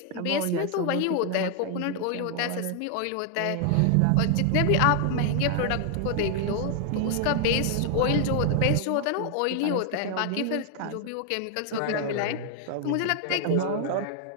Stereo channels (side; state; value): both; different; correlation 0.00